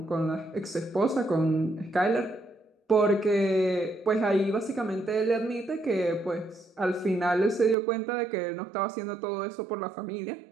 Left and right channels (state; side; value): drops out; left; at 7.8 s